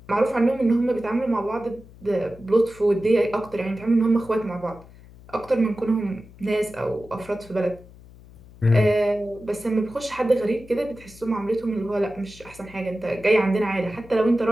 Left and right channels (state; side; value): noise; left; hum, 21 dB below the sound